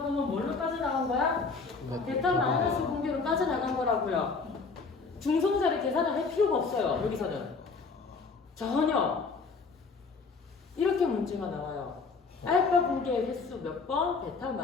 뭘로 빠져나간 거야? 베타 마이너스 붕괴로 빠져나간 거라고요. 중성자를 계산을 할 필요가 없어요. 여기서는 전혀 이렇게 문제가 나와요. 알파 붕괴의 횟수 몇 번, 베타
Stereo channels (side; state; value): right; quieter; 4.5 dB